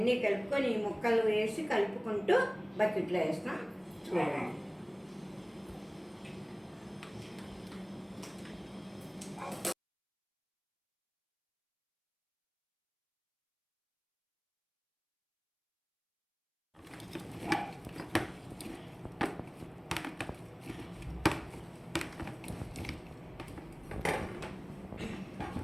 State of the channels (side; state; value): both; identical; correlation 1.00